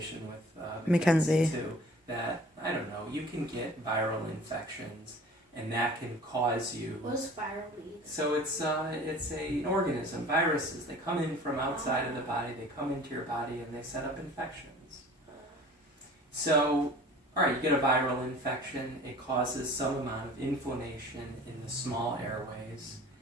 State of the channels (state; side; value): normal; both; correlation 0.46